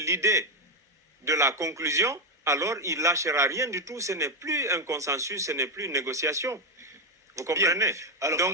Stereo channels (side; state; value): both; normal; correlation 0.05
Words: de la conclusion, alors il ne lâchera rien du tout. Ce n'est plus un consensus, ce n'est plus une négociation. Vous comprenez? Alors,